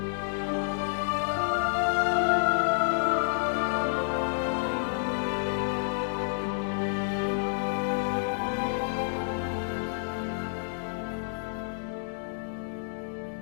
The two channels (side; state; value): right; silent; 58 dB below the other